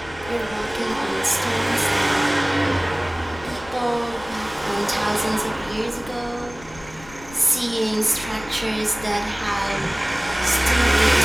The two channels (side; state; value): left; noise; rumble, 19 dB below the sound